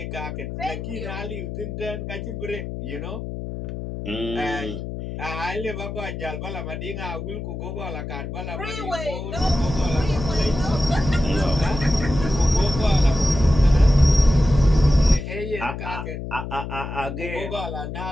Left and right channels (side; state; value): left; noise; hum, 7 dB below the sound